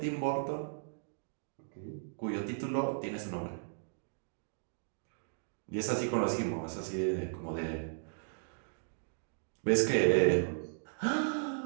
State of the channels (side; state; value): left; silent; digital silence